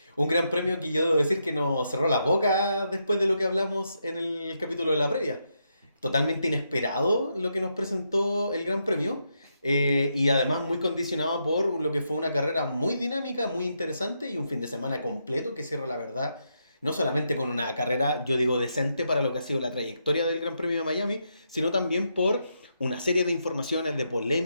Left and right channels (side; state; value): both; inverted; correlation -0.81